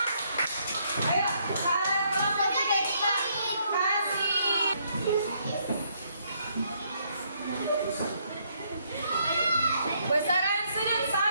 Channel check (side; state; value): both; inverted; correlation -0.71